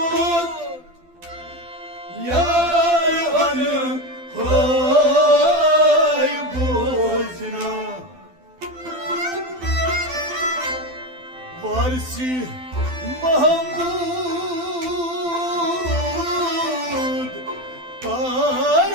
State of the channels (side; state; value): left; late; 12 ms